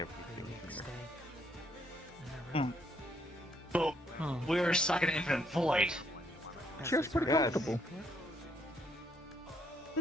here. But we're stuck in infinite void. Feels pretty comfortable. It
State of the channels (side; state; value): both; normal; correlation 0.70